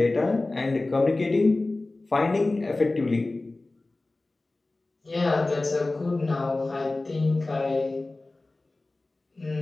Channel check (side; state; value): right; quieter; 3.1 dB